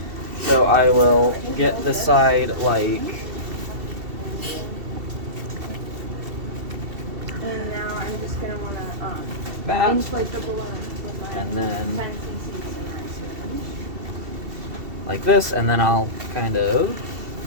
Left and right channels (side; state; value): left; late; 2.7 ms